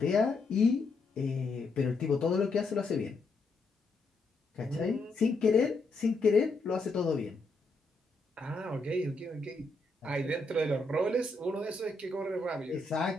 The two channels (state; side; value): quieter; right; 3.3 dB